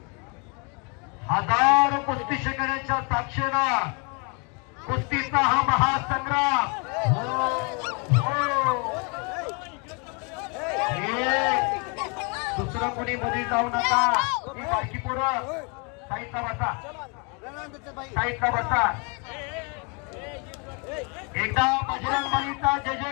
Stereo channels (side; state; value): right; quieter; 34.0 dB